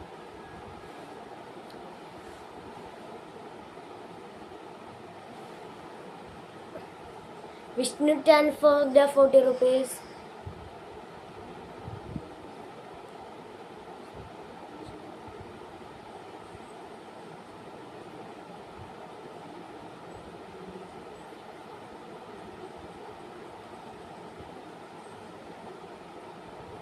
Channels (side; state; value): both; identical; correlation 1.00